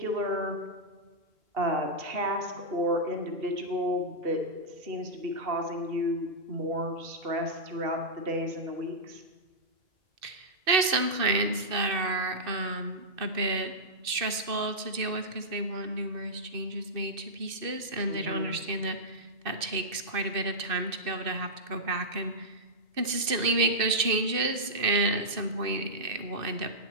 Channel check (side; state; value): left; late; 2.6 ms